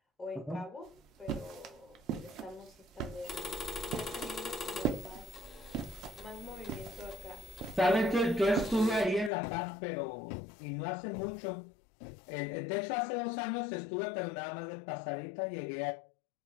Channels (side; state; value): right; drops out; at 9.3 s